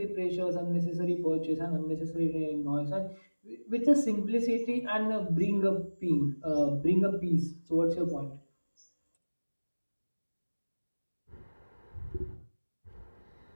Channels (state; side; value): inverted; both; correlation -1.00